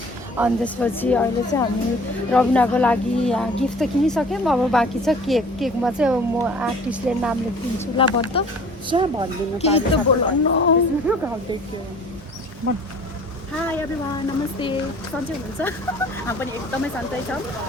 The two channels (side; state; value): both; normal; correlation 0.48